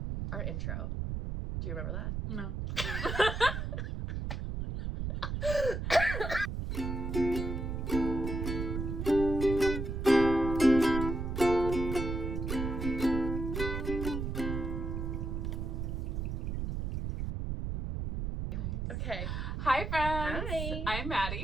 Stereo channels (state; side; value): noise; right; rumble, 3 dB below the sound